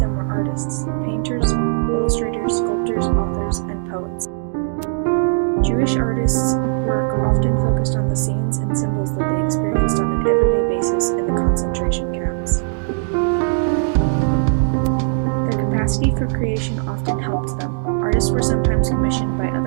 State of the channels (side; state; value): left; silent; digital silence